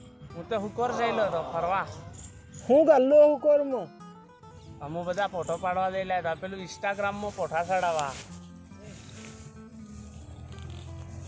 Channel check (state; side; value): identical; both; correlation 1.00